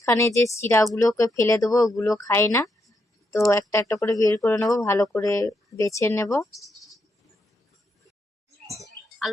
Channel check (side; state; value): both; normal; correlation 0.80